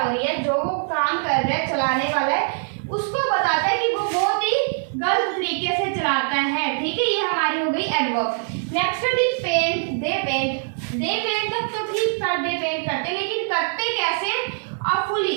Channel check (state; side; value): silent; left; digital silence